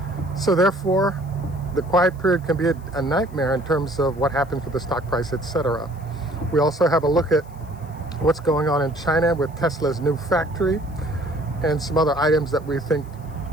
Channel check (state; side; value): noise; left; hiss, 29 dB below the sound